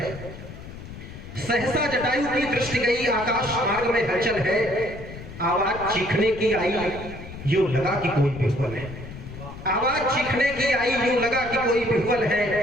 सहसा जटायु की दृष्टि गई, आकाश मार्ग में हलचल है। आवाज चीखने की आई, यूं लगा कि कोई विह्वल है। आवाज चीखने की आई, यूं लगा कि कोई विह्वल है।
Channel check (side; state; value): left; noise; rumble, 13 dB below the sound